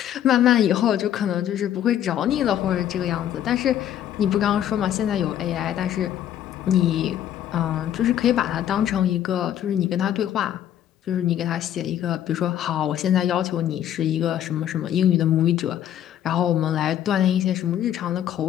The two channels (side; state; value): right; quieter; 10.9 dB